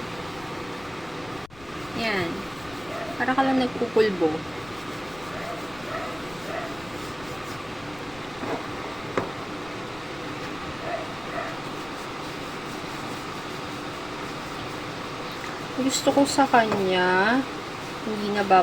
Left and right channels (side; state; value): left; noise; rumble, 21 dB below the sound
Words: Yan. Para ka lang nagpupulbo. Ibig gusto ko sa kanya, hindi